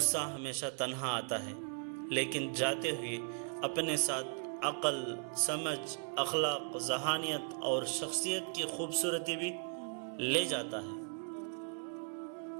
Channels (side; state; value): left; silent; 53 dB below the other